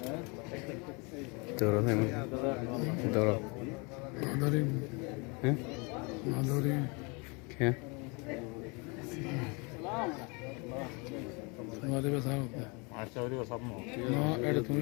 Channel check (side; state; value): right; quieter; 30.6 dB